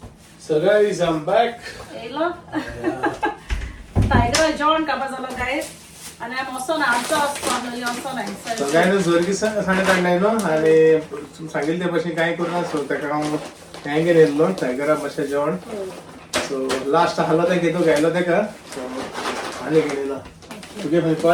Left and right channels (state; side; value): identical; both; correlation 1.00